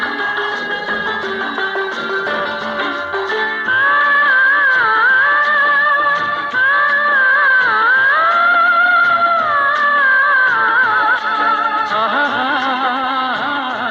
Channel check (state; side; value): identical; both; correlation 1.00